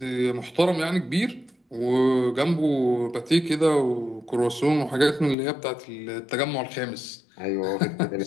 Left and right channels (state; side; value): drops out; right; at 5.4 s